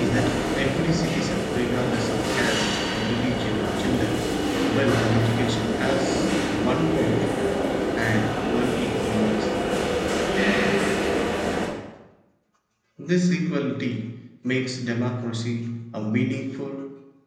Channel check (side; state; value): both; identical; correlation 1.00